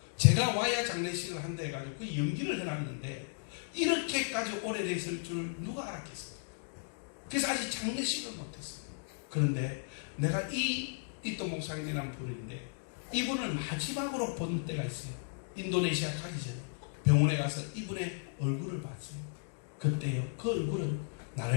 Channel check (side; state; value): right; silent; digital silence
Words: 제가 와야 장례식을 한다 해가지고 그 연기를 해놨는데 이렇게까지 오래됐을 줄 누가 알았겠어요. 그래서 아직 장례식을 못했어요. 그런데 내가 이또 목사님이라는 분인데 이분을 마지막으로 본 때가 있어요. 인도네시아 가기 전에 병원에 가서 이분의 얼굴을 봤어요. 그때요, 그 얼굴은